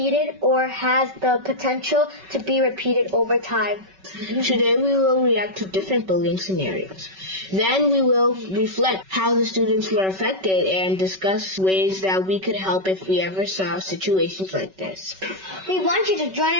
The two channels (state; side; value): late; left; 5.3 ms